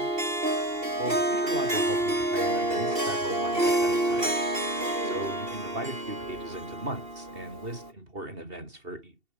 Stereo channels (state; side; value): late; left; 2.7 ms